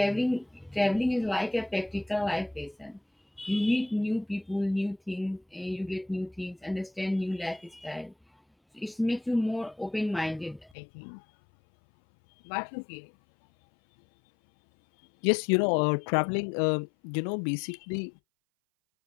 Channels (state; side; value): drops out; right; at 10.7 s